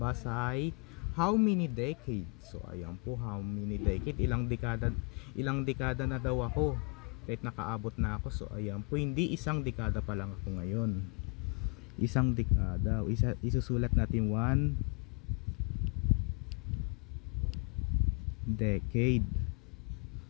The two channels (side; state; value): right; quieter; 37.0 dB